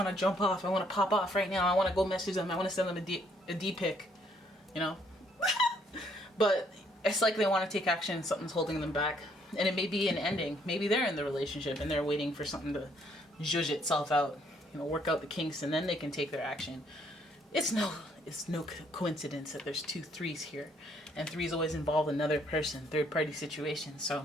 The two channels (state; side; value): normal; both; correlation 0.68